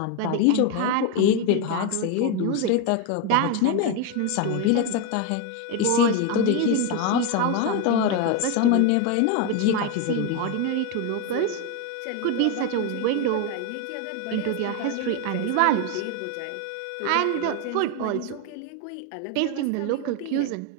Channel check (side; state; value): both; different; correlation 0.02